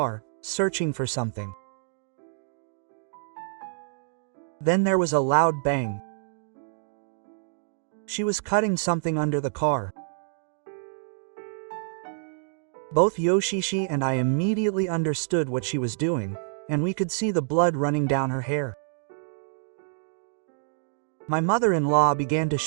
searching for something. Then there was a loud bang. She was cutting something under the car. Both Yoshishi and I immediately understood what she was doing, and we could see the blood running down her hair. My mother-in-law began to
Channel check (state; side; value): silent; left; digital silence